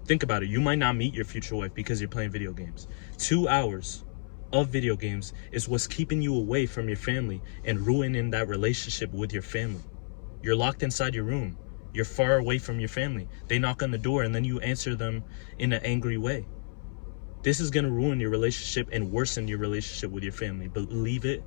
Think about it. You might not meet your future wife because you're playing video games. 2 hours of video games is what's keeping you away from your family and ruining that relationship with your family. You're locked inside your room. You're far away from your family. They knock on the door and then you answer them in an angry way. This is going to ruin your relationship and worsen your relationship with your family. Believe it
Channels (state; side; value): silent; right; 58 dB below the other